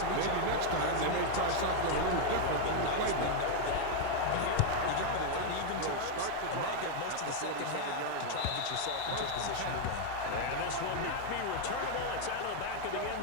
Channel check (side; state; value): both; different; correlation 0.01